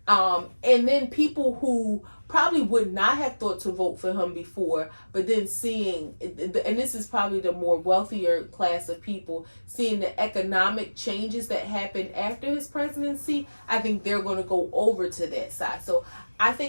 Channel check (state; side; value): inverted; both; correlation -1.00